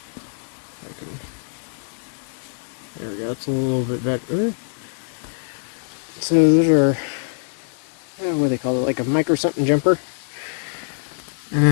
There we go, it's a little bit better. So those are, what do they call it, like a micro something jumper. And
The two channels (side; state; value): right; silent; digital silence